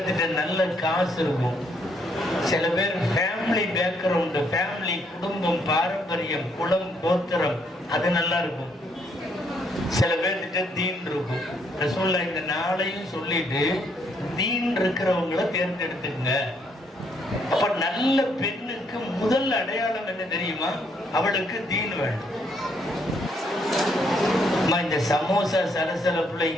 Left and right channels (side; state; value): both; normal; correlation 0.71